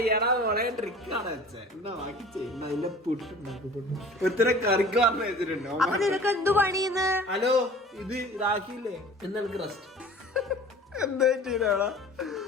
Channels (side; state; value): both; normal; correlation 0.44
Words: അപ്പൊ നിനക്ക് എന്ത് പണിയുന്നു? ഹലോ, ഇത് ഇതാക്കിയില്ലേ എന്നെനിക്ക് റെസ്റ്റ്. എന്താ ചെയ്യണ?